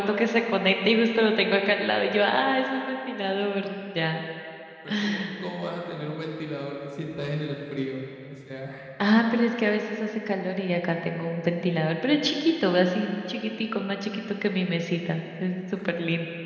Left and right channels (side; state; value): both; identical; correlation 1.00